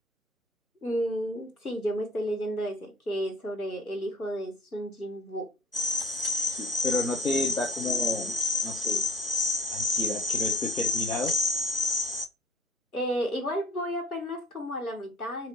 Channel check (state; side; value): normal; both; correlation 0.46